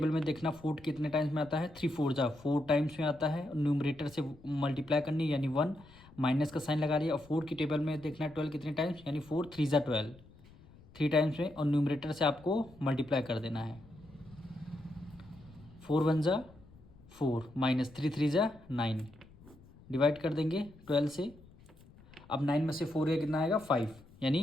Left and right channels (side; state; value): left; noise; rumble, 23 dB below the sound